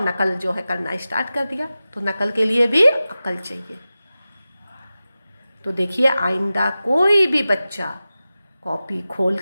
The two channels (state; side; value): inverted; both; correlation -0.95